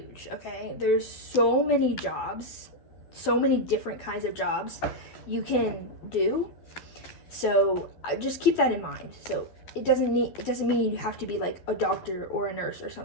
okay? There's so many jobs, so many different kinds of jobs you can do. So just keep that in mind. So it doesn't mean you have to be like a doctor or a nurse or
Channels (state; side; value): late; right; 11 ms